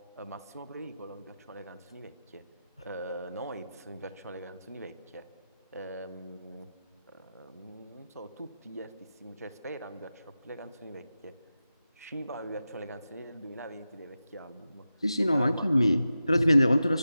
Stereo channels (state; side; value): inverted; both; correlation -0.93